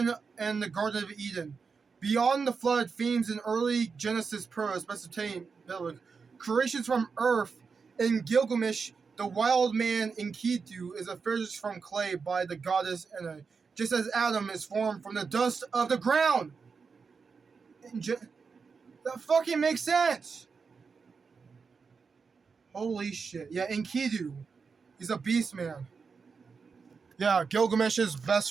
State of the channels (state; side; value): quieter; left; 5.2 dB